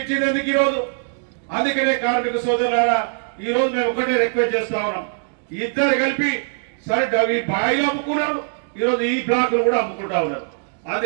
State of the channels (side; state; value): left; silent; 65 dB below the other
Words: ఎందుకు ఈరోజు? అందుకనే కార్మిక సోదరులారా ఈ రోజు మేము ఒకటే రిక్వెస్ట్ చేస్తా ఉన్నాం, ఇద్దరు కలిపి సరే ఈ బాయిలు అమ్ముకున్నారు, ఈరోజు ఈ బ్లాక్లు కూడా అమ్ముకుంటా ఉన్నారు.